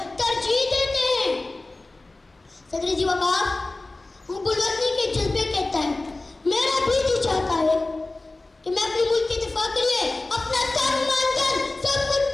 तरजीह देते हैं। सदर जी वकार, हुब्बुल वतनी के जज्बे के तहत मेरा भी जी चाहता है कि मैं अपने मुल्क के दिफा के लिए अपना तन मन धन सब कुछ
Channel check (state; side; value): quieter; right; 3.0 dB